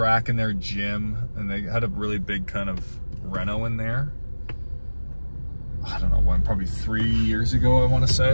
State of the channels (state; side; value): inverted; both; correlation -1.00